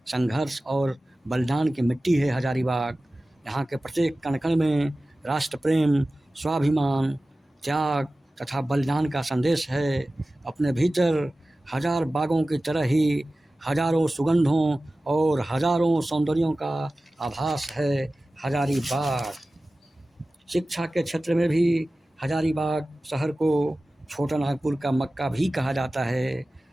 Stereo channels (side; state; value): both; normal; correlation 0.96